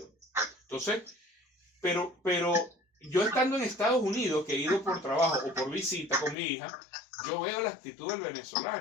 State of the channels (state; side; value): drops out; right; at 6.4 s